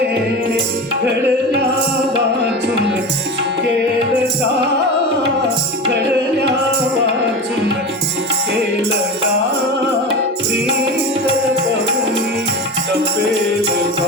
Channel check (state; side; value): normal; both; correlation 0.27